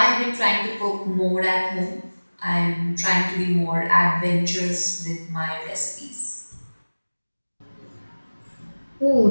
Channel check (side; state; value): both; inverted; correlation -1.00